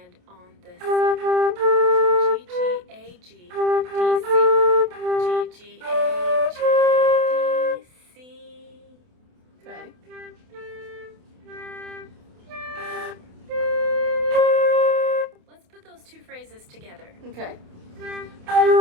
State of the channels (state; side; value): late; left; 28 ms